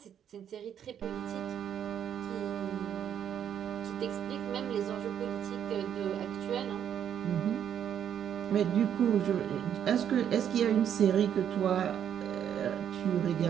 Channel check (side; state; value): left; quieter; 9.2 dB